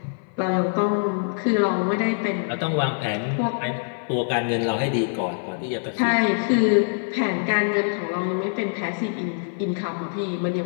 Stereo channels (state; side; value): silent; right; 58 dB below the other